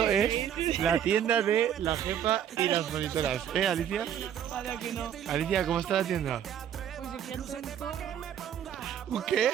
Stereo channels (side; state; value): left; quieter; 9.6 dB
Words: es la tienda de la jefa y las monitoras. Alicia? Para que no. Alicia, ¿cómo está la tienda? Pues yo quiero un zorro. ¿Un qué?